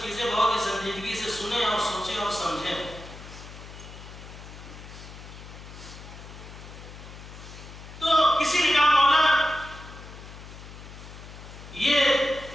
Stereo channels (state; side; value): noise; left; hum, 15 dB below the sound